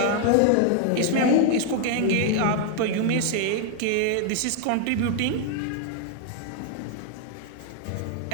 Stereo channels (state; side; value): different; both; correlation 0.00